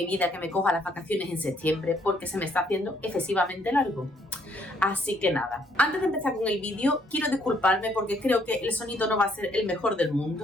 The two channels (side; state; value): both; normal; correlation 0.68